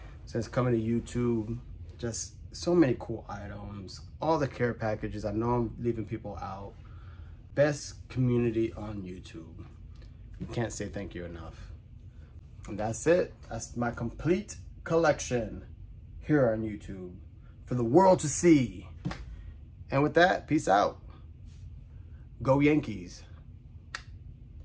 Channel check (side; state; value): both; identical; correlation 1.00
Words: since coming to YouTube. Just so many cool items, all the care packages. I know I'm leaving people out. Best community on YouTube. Can't say thank you enough. And that's it. That's my complete collection here on YouTube for the world to see. And with that, peace out. Go Yankees.